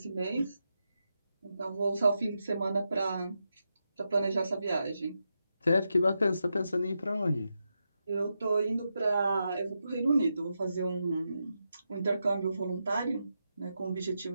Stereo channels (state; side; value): inverted; both; correlation -0.86